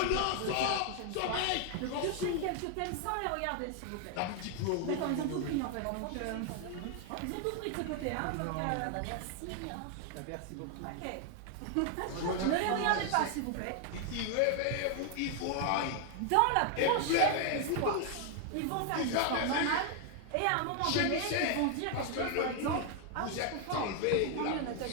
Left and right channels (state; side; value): different; both; correlation 0.00